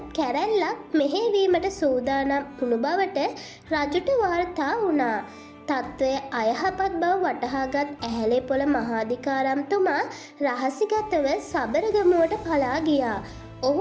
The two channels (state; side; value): identical; both; correlation 1.00